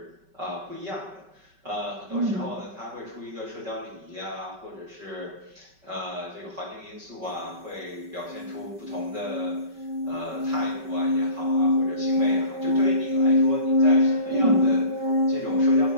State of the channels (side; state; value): left; late; 5.2 ms